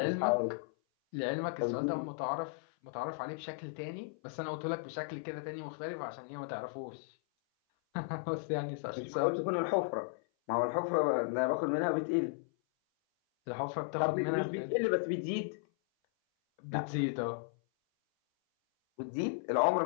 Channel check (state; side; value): silent; right; 54 dB below the other